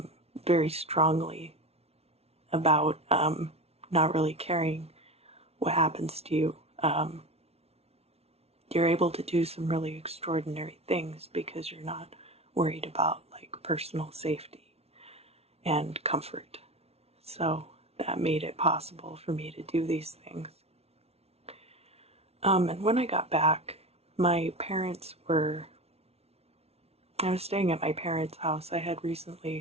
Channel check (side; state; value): left; late; 0.30 ms